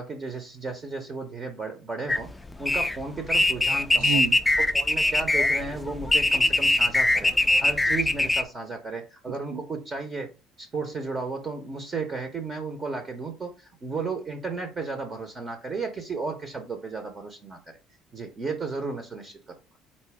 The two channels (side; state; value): both; normal; correlation 0.87